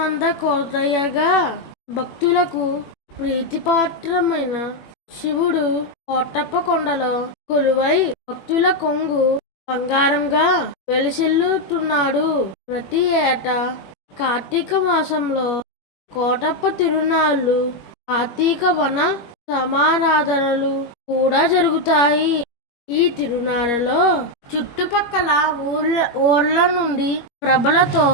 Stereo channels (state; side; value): late; right; 21 ms